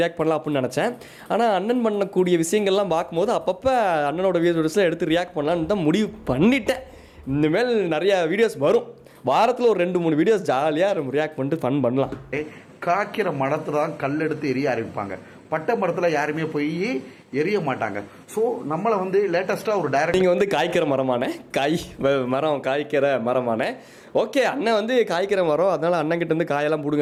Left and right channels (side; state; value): both; identical; correlation 1.00